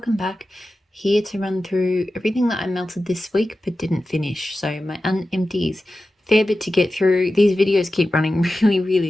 back. Here to run through everything that I melted this week but didn't finish. So my unempties, fair bit to get through. These videos keep running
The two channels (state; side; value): normal; both; correlation 0.94